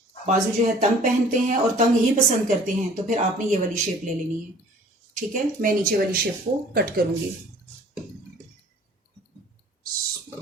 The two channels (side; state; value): both; normal; correlation 0.51